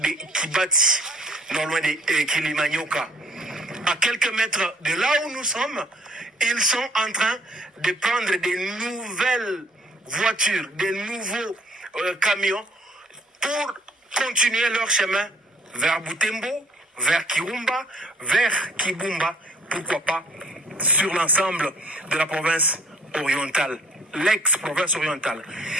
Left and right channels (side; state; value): both; normal; correlation 0.58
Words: Kibati, non loin de Kilimanyoka. À quelques mètres de là où nous sommes, ils sont en train de prendre des nouvelles voitures, des nouveaux camions pour continuer leur chemin vers Butembo, vers Kirumba, vers Kibumba, pourquoi pas sur l'ensemble de la province orientale, l'ex-province orientale.